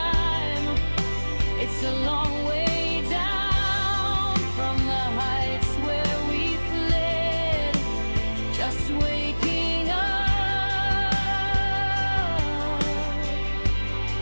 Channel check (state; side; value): inverted; both; correlation -1.00